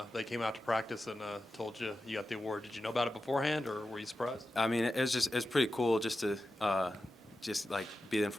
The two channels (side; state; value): both; normal; correlation 0.92